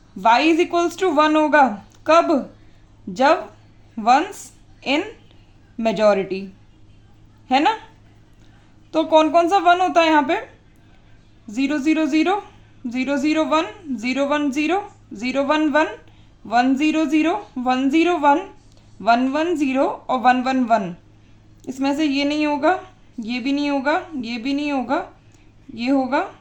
y इज इक्वल्स टू 1 होगा। कब? जब वंस इन मेजॉरिटी, है ना? तो कौन कौन सा 1 होता है यहाँ पे? 0 0 0, 0 0 1, 0 1 0, 0 1 1, 1 0 0, 1 0 1, 1 1 0 और 1 1 1। इसमें से ये नहीं होगा, ये भी नहीं होगा, ये भी नहीं होगा, ये होगा,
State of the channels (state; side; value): identical; both; correlation 1.00